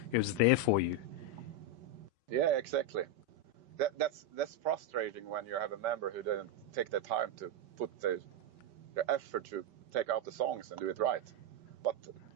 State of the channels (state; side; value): late; left; 5.2 ms